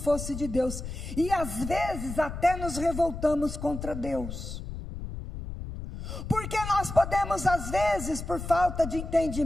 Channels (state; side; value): noise; left; rumble, 8 dB below the sound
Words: de Deus, e às vezes até nos revoltamos contra Deus. Porque nós podemos, às vezes, por falta de